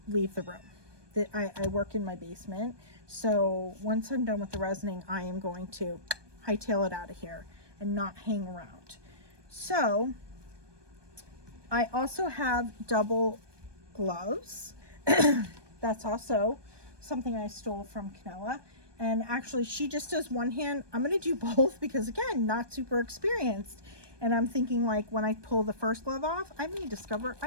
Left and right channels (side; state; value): left; late; 1.2 ms